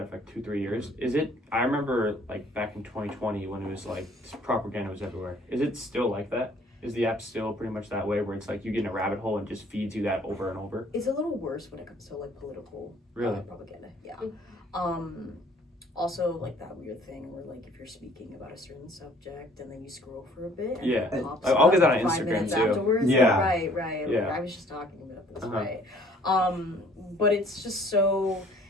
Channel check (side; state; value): both; normal; correlation 0.57